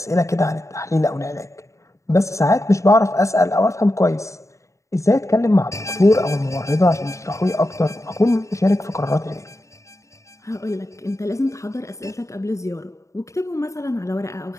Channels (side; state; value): right; late; 0.15 ms